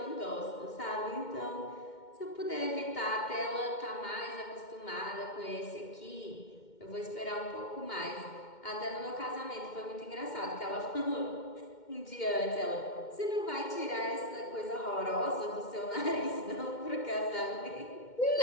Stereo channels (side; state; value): right; late; 2.1 ms